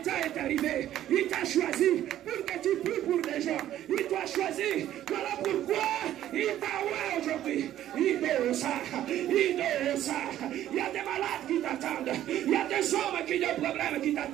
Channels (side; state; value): left; quieter; 12.4 dB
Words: est arrivé. Il t'a choisi pour que tu pries pour des gens. Il t'a choisi. Voilà pourquoi il t'a oué aujourd'hui. Il doit ça. Il y a des malades qui t'attendent. Il y a des hommes qui ont des problèmes qui